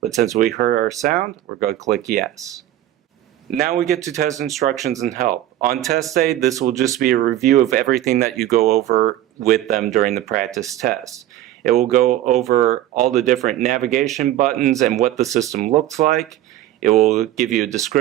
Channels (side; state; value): left; quieter; 13.4 dB